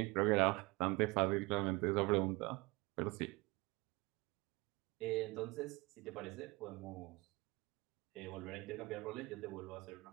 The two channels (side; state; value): left; quieter; 23.9 dB